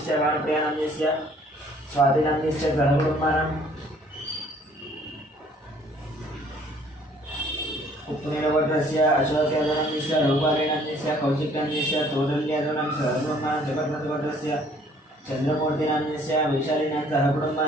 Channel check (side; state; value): both; normal; correlation 0.59